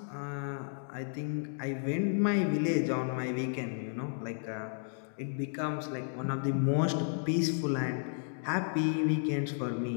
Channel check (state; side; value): silent; right; digital silence